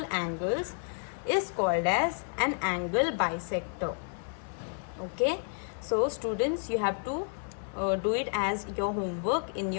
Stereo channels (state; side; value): silent; right; 57 dB below the other